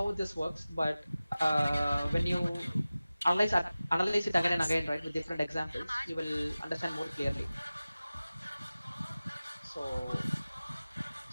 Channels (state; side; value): inverted; both; correlation -0.96